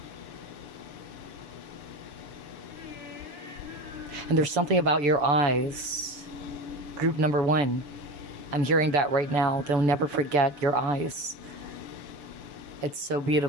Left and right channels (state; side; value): late; left; 6.9 ms